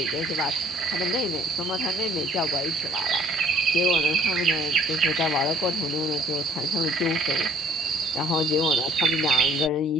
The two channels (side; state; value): both; normal; correlation 0.57